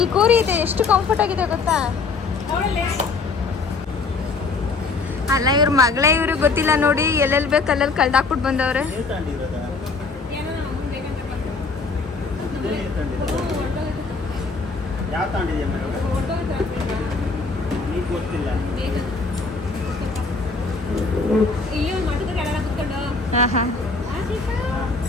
ಕೂರಿ ಇದೆ, ಎಷ್ಟು ಕಂಫರ್ಟ್ ಆಗಿದೆ ಗೊತ್ತಾ? ಅಲ್ಲ ಇವ್ರ ಮಗಳೇ, ಇವ್ರಿಗೆ ಗೊತ್ತಿಲ್ಲ ನೋಡಿ, ಎಲ್ಲೆಲ್ಲಿ ಬೇಕು ಅಲ್ಲೆಲ್ಲಿ ಕಳ್ದಾಕ್ಬಿಟ್ಟು ಬಂದವ್ರೆ. ಯಾವ ತಗೊಂಡಿದ್ಯಾ ನೀನು ಗೊತ್ತಿಲ್ಲ. ಹಾಂ ಹಾಂ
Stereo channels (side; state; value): right; quieter; 4.3 dB